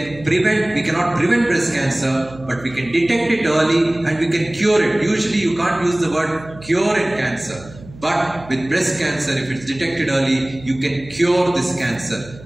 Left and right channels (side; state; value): right; noise; hum, 19 dB below the sound